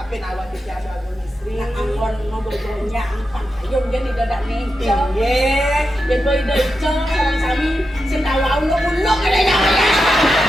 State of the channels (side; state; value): both; normal; correlation 0.88